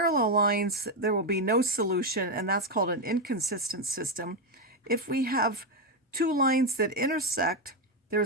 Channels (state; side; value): normal; both; correlation 0.06